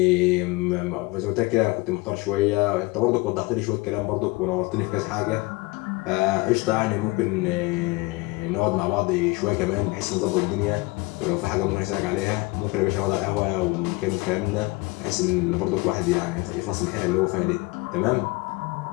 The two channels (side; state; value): right; quieter; 22.7 dB